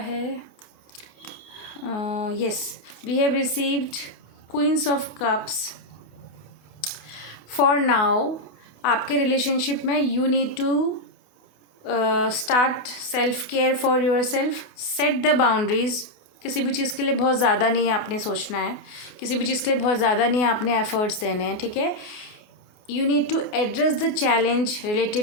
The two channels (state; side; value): late; right; 28 ms